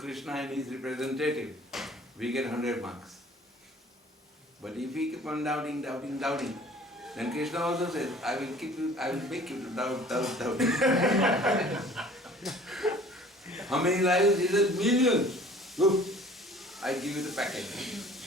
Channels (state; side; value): normal; both; correlation 0.50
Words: and his representative, we get 100 marks. But if we keep on doubting, doubting, doubting, then Krishna also says, I will make you to doubt, doubt, doubt. How many lives? He says, millions. Look, I give you the package.